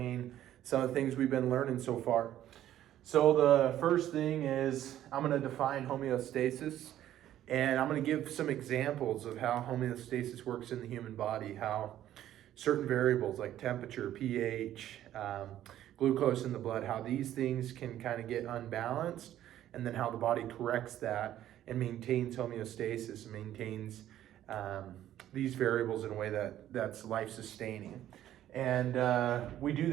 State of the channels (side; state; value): left; quieter; 12.3 dB